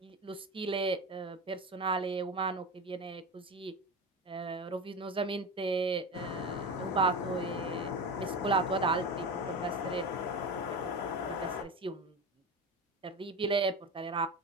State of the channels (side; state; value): both; normal; correlation 0.24